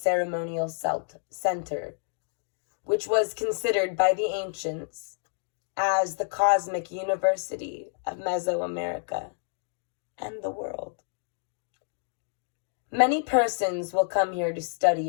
center, which was considered by the ancients as the cosmic university of Mesoamerica and the world. Many persons will come here to study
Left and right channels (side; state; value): right; silent; digital silence